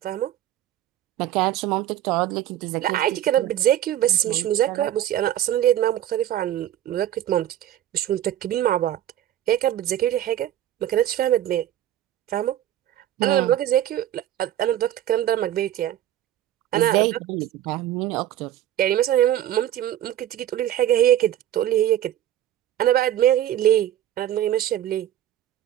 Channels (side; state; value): left; quieter; 12.0 dB